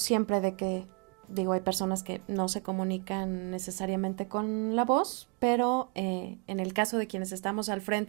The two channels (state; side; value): quieter; left; 32.0 dB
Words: de que, hay personas que no se comunican necesariamente con la voz, pero en el caso de quienes estamos al